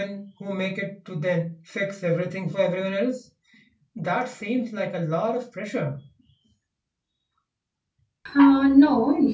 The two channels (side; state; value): both; identical; correlation 1.00